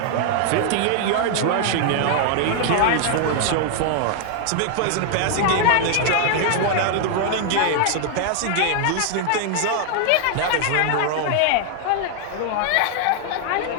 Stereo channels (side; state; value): both; different; correlation 0.00